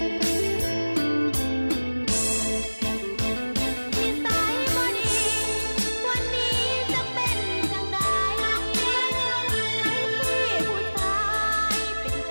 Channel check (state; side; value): inverted; both; correlation -1.00